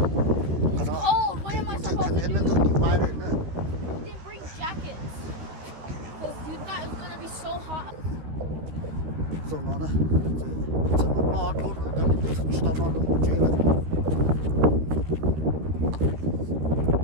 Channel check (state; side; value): late; left; 13 ms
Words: It's cold. What am I supposed to do? You didn't bring jackets. Because you thought it was going to be so hot. So nó nè, giờ nó lo thôi, nó đi tới tao nó không chơi lại.